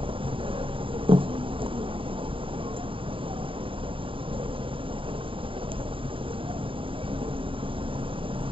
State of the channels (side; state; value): left; late; 0.25 ms